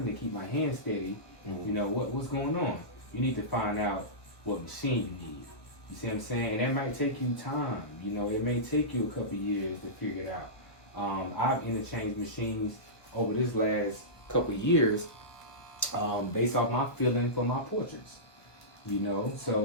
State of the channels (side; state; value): right; late; 1.3 ms